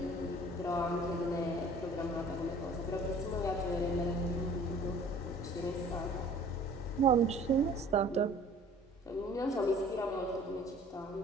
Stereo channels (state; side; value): normal; both; correlation 0.50